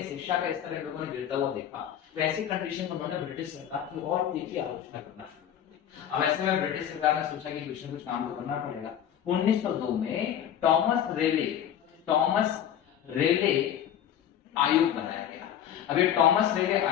शिक्षा का स्तर इन लोगों ने गिरता हुआ देखा, तो ऐसी कंडीशन में उन्होंने ब्रिटिश सरकार की और तीखी आलोचना करना शुरू कर दी। अब ऐसे में ब्रिटिश सरकार ने सोचा कि कुछ न कुछ काम तो करना पड़ेगा। 1902 में टॉमस रेले आयोग बनाया गया। अब ये टॉमस रेले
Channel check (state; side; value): quieter; right; 10.0 dB